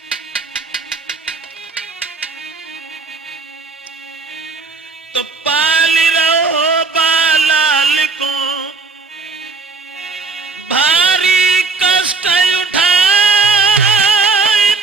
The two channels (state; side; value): quieter; left; 4.5 dB